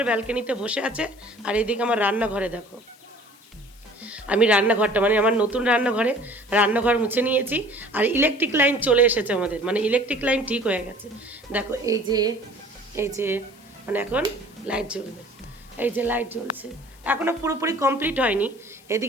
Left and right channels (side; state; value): left; noise; hiss, 26 dB below the sound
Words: ব্যালকনিতে বসে আছে, আর এইদিকে আমার রান্নাঘরে দেখো। আমি রান্নাঘরটা, মানে আমার নতুন রান্নাঘর মুছে নিয়েছি। আর ইলেকট্রিক লাইন চলে এসেছে আমাদের, মানে ইলেকট্রিক লাইন ঠিক হয়ে গেছে। দেখো এই যে মানে এখন লাইট জ্বলবে। এই যে লাইট জ্বলছে, এখনও পুরোপুরি কমপ্লিট হয়নি।